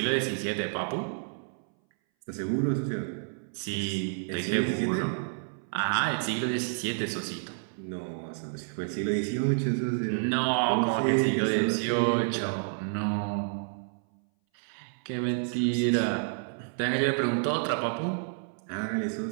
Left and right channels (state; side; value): silent; left; 58 dB below the other